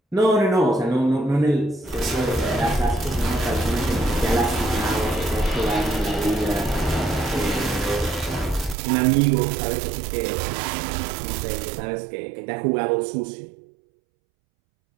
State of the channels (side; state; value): left; drops out; at 8.8 s